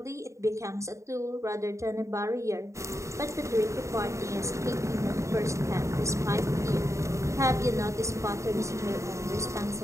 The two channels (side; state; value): left; late; 0.14 ms